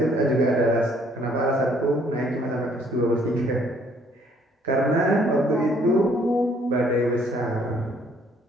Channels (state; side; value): normal; both; correlation 0.63